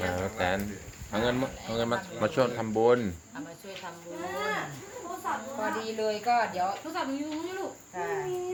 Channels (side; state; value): both; identical; correlation 1.00